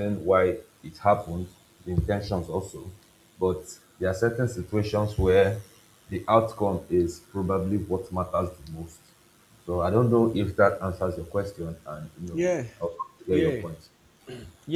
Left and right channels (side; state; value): both; identical; correlation 1.00